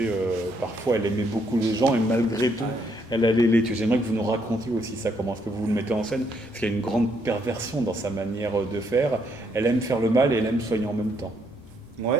parfois, elle aimait beaucoup les gens, et malgré tout, elle allait les tuer. J'aimerais que vous nous racontiez aussi ça, comment est-ce que vous le mettez en scène, parce qu'il y a une grande perversion dans sa manière de faire. Elle aime faire le mal et elle aime soigner en même temps.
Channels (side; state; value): both; normal; correlation 0.73